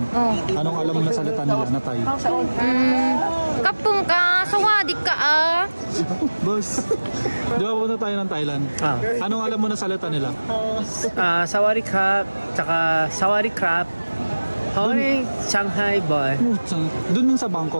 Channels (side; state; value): both; inverted; correlation -1.00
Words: Oh. Anong alam mo na salita nila na Thai? Kapung ka, sawadika ah. Boss, di ba pupunta tayo ng Thailand? Anong alam mo na salita nila? Sawari crab, tsaka sawari crab. Hoy, Shanghai boy. Doon sa